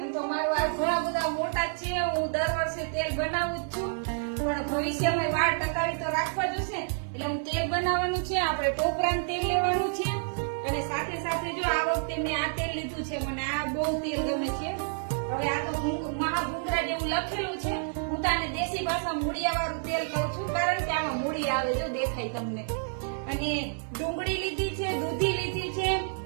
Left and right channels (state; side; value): silent; left; digital silence